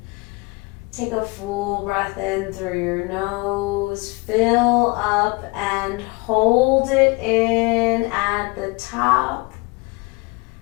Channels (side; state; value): right; quieter; 26.1 dB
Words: Take a full breath in through your nose. Fill up and hold it in at the top.